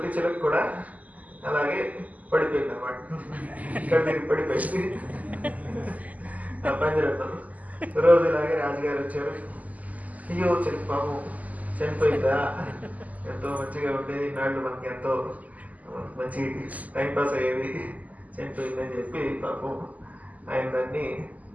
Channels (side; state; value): left; late; 0.076 ms